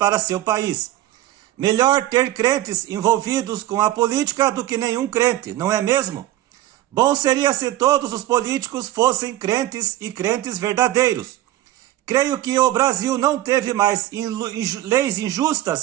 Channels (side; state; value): left; quieter; 14.8 dB